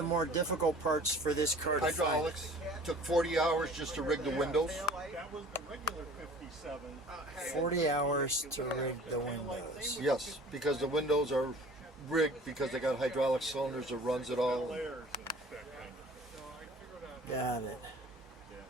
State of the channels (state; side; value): normal; both; correlation 0.46